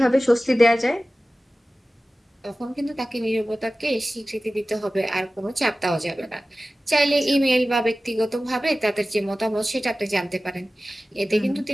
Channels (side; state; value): both; normal; correlation 0.96